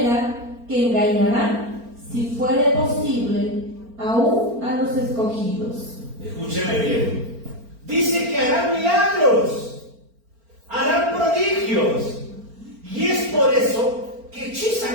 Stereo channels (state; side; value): late; left; 4.4 ms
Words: que engañarán, si fuere posible, aún a los escogidos. Escúcheme bien. Dice que harán milagros, harán prodigios, y es por eso que